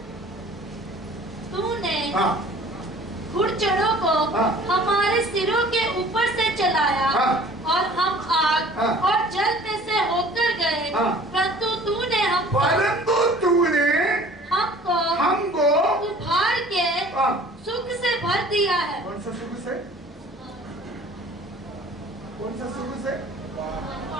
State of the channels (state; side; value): normal; both; correlation 0.49